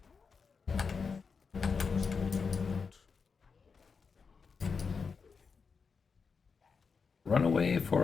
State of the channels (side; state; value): right; quieter; 5.4 dB